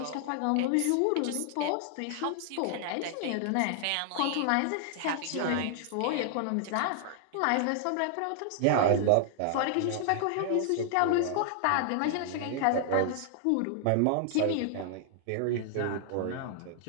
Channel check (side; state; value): both; different; correlation 0.00